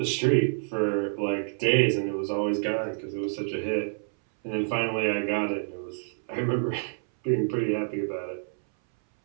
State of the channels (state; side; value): silent; left; 60 dB below the other